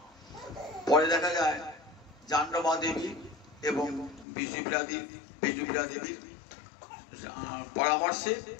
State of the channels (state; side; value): drops out; right; at 4.2 s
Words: পরে দেখা যায় জাহ্নবী দেবী এবং বিষ্ণুপ্রিয়া দেবীর